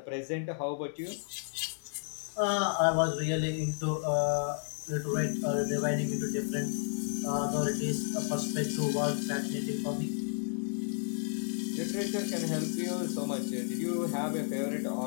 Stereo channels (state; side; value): silent; right; digital silence